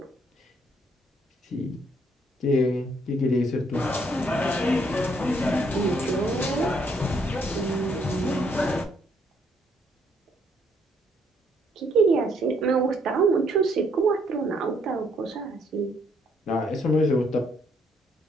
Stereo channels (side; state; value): both; normal; correlation 0.70